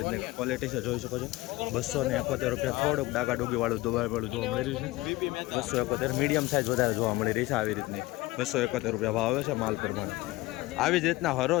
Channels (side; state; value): right; quieter; 19.9 dB